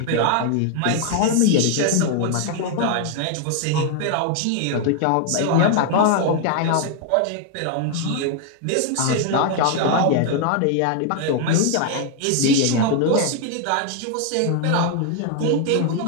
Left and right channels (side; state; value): both; different; correlation 0.00